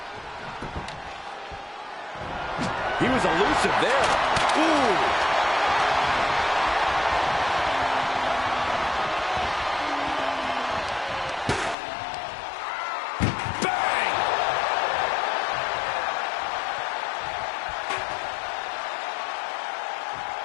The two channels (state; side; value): drops out; right; at 11.8 s